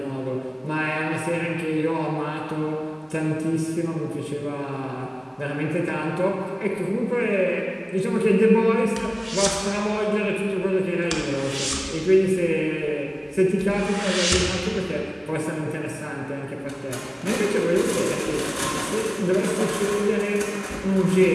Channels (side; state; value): both; identical; correlation 1.00